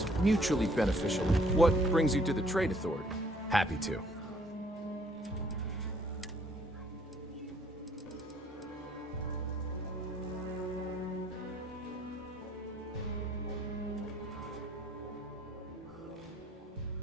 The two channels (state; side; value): normal; both; correlation 0.62